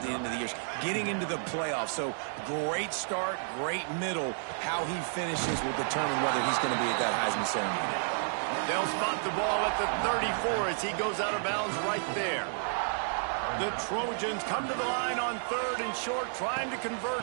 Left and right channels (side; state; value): left; silent; digital silence